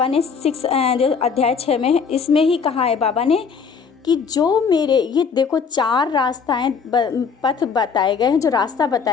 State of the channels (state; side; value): quieter; right; 5.9 dB